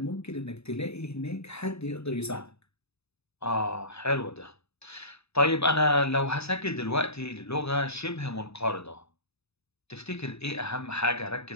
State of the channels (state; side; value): late; right; 0.79 ms